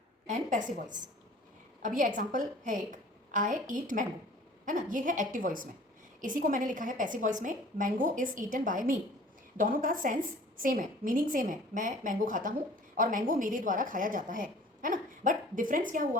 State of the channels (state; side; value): normal; both; correlation 0.49